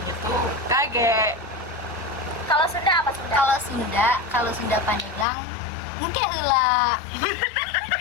tuh kage. kalau Sunda apa Sunda? Kalau Sunda Pandeglang mungkin heula.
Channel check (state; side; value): drops out; right; at 5.2 s